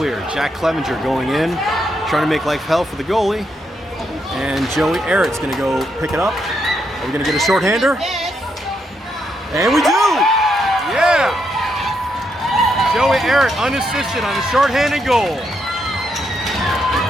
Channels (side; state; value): both; normal; correlation 0.79